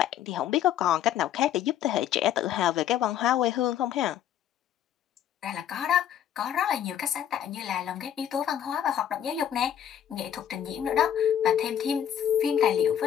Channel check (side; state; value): right; quieter; 10.2 dB